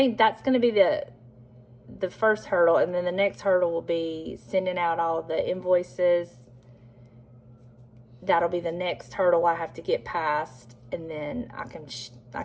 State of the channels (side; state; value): both; identical; correlation 1.00